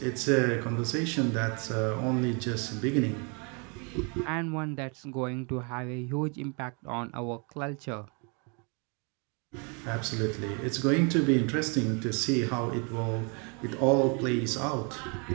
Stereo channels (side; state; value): left; quieter; 34.5 dB